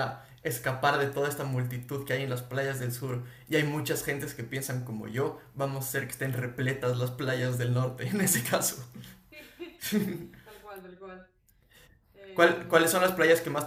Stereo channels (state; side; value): identical; both; correlation 1.00